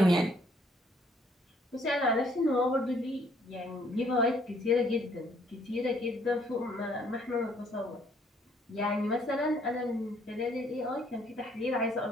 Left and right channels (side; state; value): both; normal; correlation 0.64